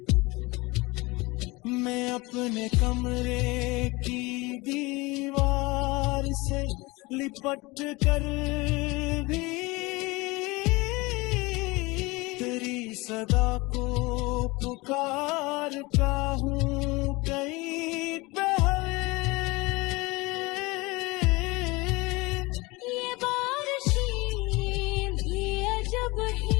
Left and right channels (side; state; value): right; quieter; 23.5 dB